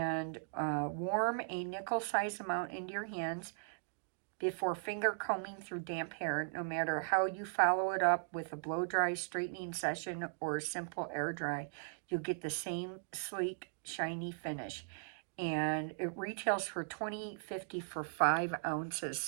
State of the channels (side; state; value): left; silent; digital silence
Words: warm a nickel-sized amount into your hands before finger combing through damp hair, no matter how you follow it up with a blow-dry straightening session or a simple air dry. You'll get the same sleek, shiny finish. And it retails for $20.50 for 5 ounces.